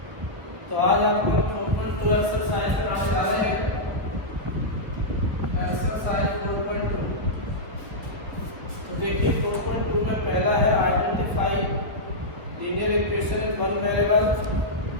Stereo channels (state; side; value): late; left; 1.5 ms